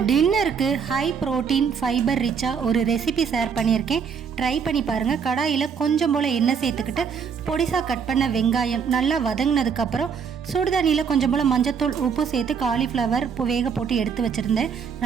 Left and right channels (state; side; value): quieter; left; 6.6 dB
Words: டின்னருக்கு ஹை ப்ரோட்டீன் ஃபைபர் ரிச்சாக ஒரு ரெசிபி ஷேர் பண்ணியிருக்கேன், ட்ரை பண்ணி பாருங்கள். கடாயில் கொஞ்சம் போல் எண்ணெய் சேர்த்துக்கிட்டு பொடிசாக கட் பண்ண வெங்காயம் நல்லா வதங்கினதுக்கப்புறம் சுடுதண்ணியில் கொஞ்சம் போல் மஞ்சத்தூள், உப்பு சேர்த்து காலிஃப்ளவர் வேக போட்டு எடுத்து வச்சுருந்தேன்.